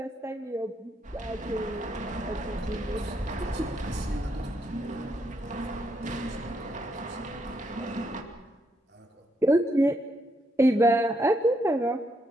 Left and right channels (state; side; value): normal; both; correlation 0.77